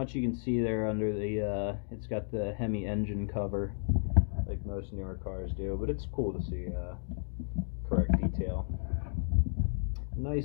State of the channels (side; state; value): right; silent; digital silence